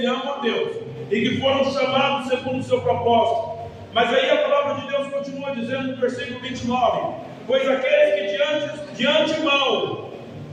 amam a Deus e que foram chamados segundo o seu propósito. Mas aí a palavra de Deus continua dizendo no versículo 29: pois aqueles que de antemão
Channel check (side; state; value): both; identical; correlation 1.00